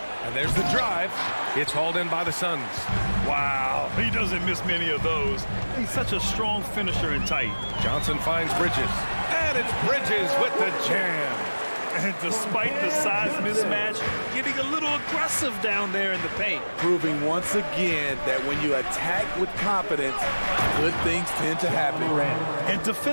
and there's the drive. It's hauled in by the Suns. Wow, he doesn't miss many of those. He's such a strong finisher and tight. Johnson finds Bridges. And it's Bridges with the jam. And despite the size mismatch, getting a little aggressive down there in the paint. Proving once again that when you attack with confidence, good things tend to happen. And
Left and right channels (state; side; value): inverted; both; correlation -1.00